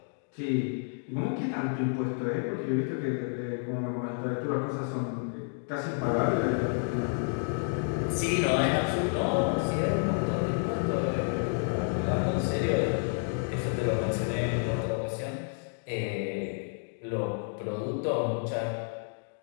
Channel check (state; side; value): silent; right; 58 dB below the other